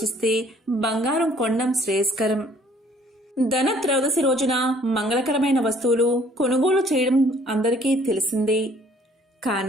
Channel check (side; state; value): both; normal; correlation 0.58